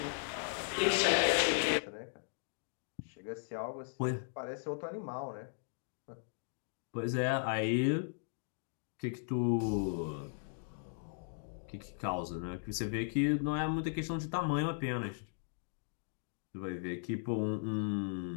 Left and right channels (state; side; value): silent; right; digital silence